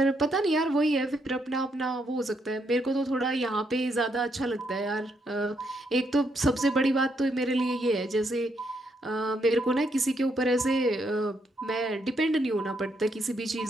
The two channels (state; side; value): normal; both; correlation 0.76